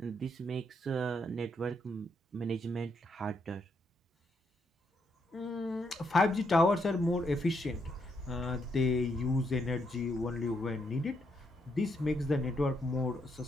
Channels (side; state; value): both; normal; correlation 0.77